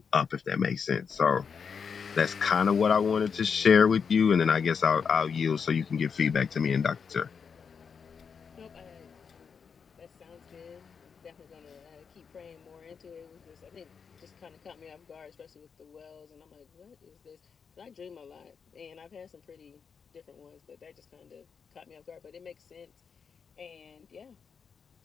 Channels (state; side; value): quieter; right; 6.2 dB